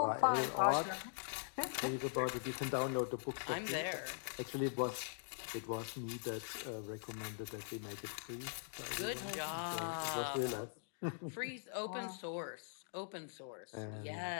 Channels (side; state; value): right; silent; digital silence